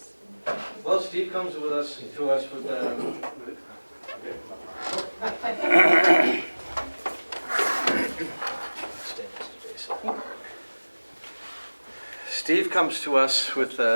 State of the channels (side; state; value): both; inverted; correlation -1.00